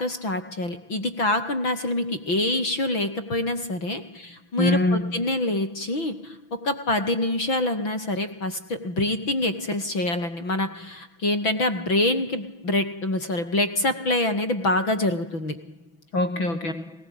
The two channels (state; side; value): late; right; 6.0 ms